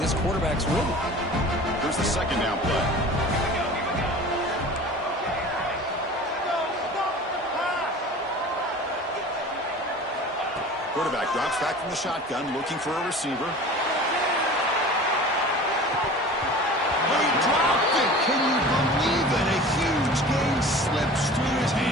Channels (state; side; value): normal; both; correlation 0.40